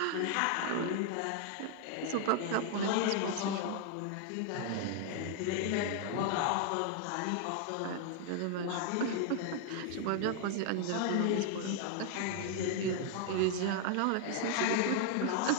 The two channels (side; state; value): both; different; correlation 0.00